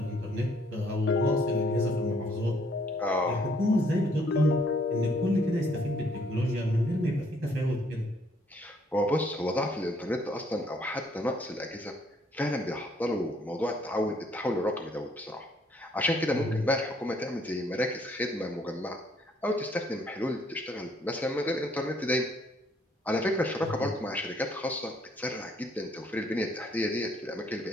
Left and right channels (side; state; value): both; normal; correlation 0.65